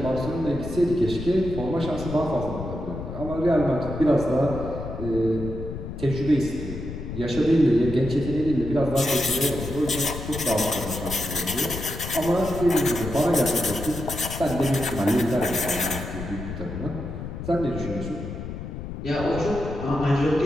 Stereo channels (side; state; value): left; noise; rumble, 8 dB below the sound